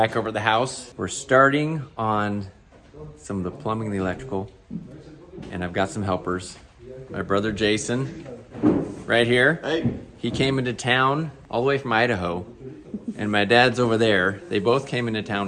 over at the house. We're starting on some of the plumbing and the electrical, and I've got some helpers. My brother Jason, right here. Hey. He came into town all the way from Idaho, and my dad's over there. They both came into town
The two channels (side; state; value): both; identical; correlation 1.00